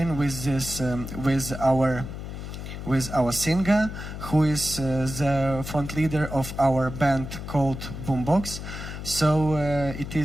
with this with our singer, who is the front leader of our band called Boombox. So it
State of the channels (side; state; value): left; noise; hum, 8 dB below the sound